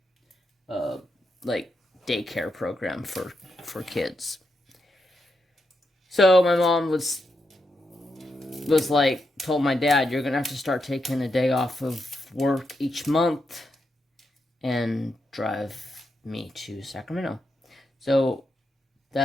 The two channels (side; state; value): both; normal; correlation 0.84